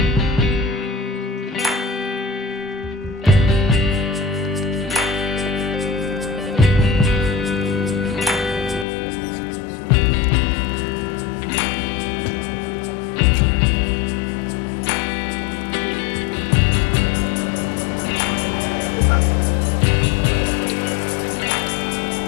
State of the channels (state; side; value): drops out; right; at 8.8 s